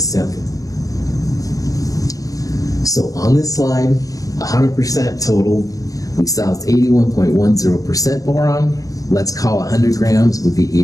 sample. So on this slide, 100% total, we saw it's 81.10% boron. Let's call 100 grams would be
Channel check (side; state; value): right; late; 0.17 ms